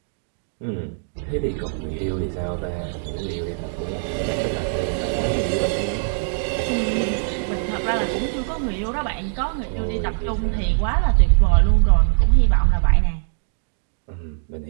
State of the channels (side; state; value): left; silent; digital silence